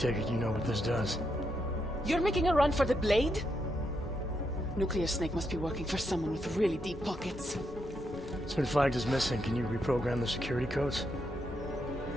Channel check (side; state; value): both; normal; correlation 0.80